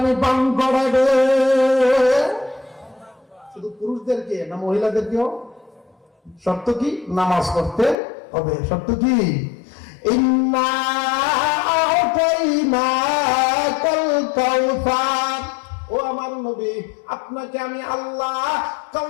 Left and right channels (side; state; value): right; drops out; at 8.0 s